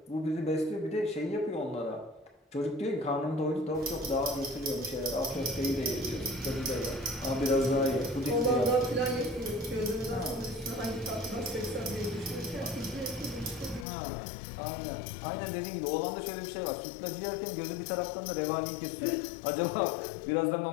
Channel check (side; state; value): right; drops out; at 13.9 s